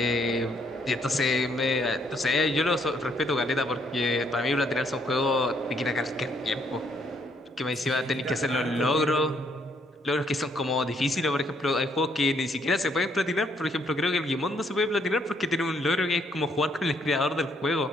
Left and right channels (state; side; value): normal; both; correlation 0.70